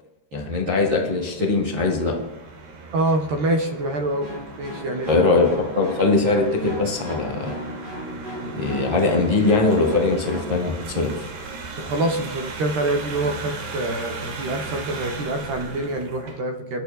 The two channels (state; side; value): late; left; 13 ms